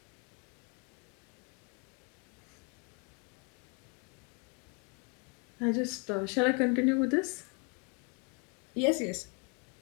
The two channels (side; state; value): right; quieter; 33.9 dB